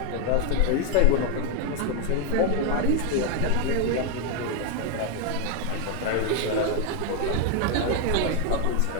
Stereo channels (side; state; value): both; different; correlation 0.01